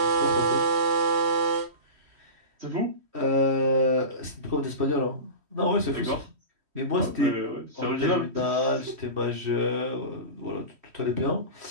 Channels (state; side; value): late; left; 3.1 ms